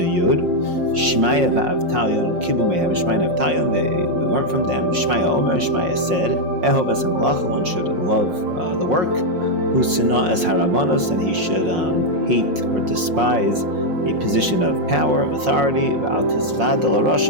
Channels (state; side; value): late; left; 5.5 ms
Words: Yud. Shmaya va'avtalion kibumehem. Shmaya and Avtalion, we learned from them. Shmaya Omer, Shmaya said, Ehov es hamalacha, one should love the work. Usina es harabanos, and he should hate or despise a position of power, of authority. V'al tisvad el